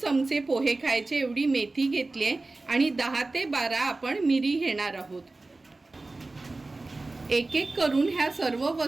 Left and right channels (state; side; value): quieter; left; 3.2 dB